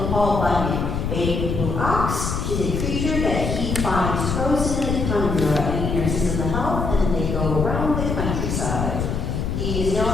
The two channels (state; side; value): noise; left; rumble, 2 dB below the sound